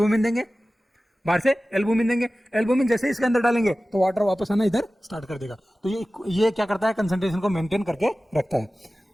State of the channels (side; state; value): both; normal; correlation 0.96